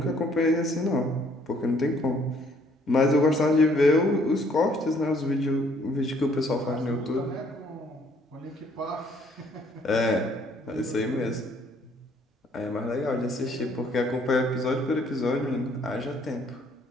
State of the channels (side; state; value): both; normal; correlation 0.64